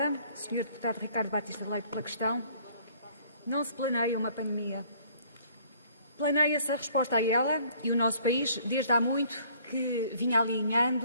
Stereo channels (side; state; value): both; inverted; correlation -0.58